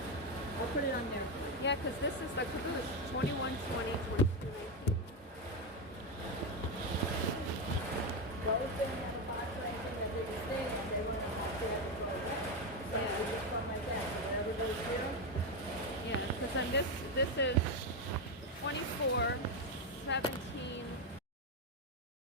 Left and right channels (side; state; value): both; normal; correlation 0.10